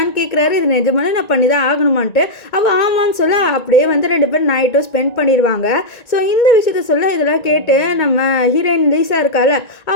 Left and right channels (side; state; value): right; late; 1.9 ms